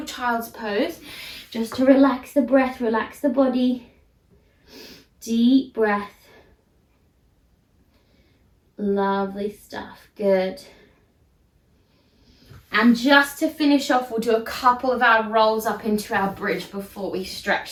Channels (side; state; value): both; identical; correlation 1.00